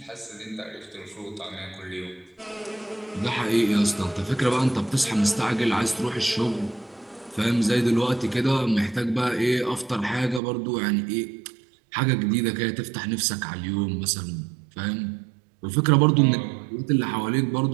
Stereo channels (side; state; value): left; drops out; at 10.4 s